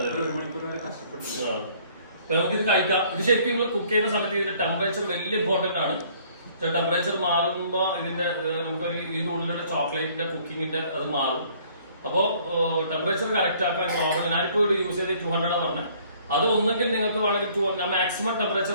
നമുക്കിത് കഴിക്കാം. ഇത് ശരിക്കും നിങ്ങൾ കുക്ക് ചെയ്യുന്ന സമയത്ത് ഇതിന്റെ ടെമ്പറേച്ചർ വലിയ ഇമ്പോർട്ടന്റ് ആണ്. ടെമ്പറേച്ചർ മാറുമ്പോ ഇതിന്റെ നമുക്കൊരു ഇതിന്റെ ഉള്ളിലുള്ള ചോക്ലേറ്റിന്റെ കുക്കിങ്ങിന്റെ അത് മാറും. അപ്പോ ടെമ്പറേച്ചർ കറക്റ്റ് ആക്കാൻ നോർമൽ. ഞാനിപ്പോ ഇവിടെ യൂസ് ചെയ്ത് 200 പറഞ്ഞത്. അത് ഒന്നെങ്കിൽ നിങ്ങൾക്ക് വേണമെങ്കിൽ ഞാൻ മാക്സിമം ടെമ്പറേച്ചർ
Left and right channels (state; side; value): inverted; both; correlation -0.59